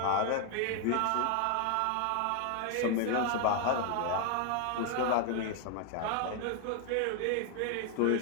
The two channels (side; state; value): both; different; correlation 0.00